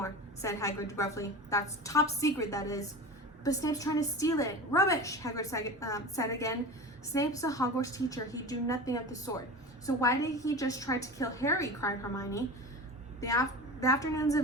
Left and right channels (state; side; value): normal; both; correlation 0.31